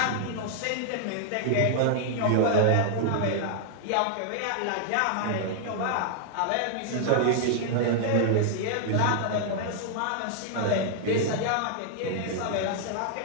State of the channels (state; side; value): different; both; correlation -0.01